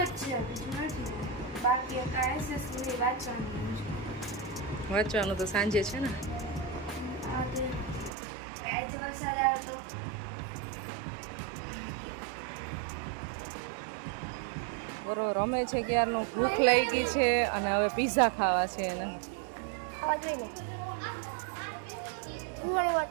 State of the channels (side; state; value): left; drops out; at 8.1 s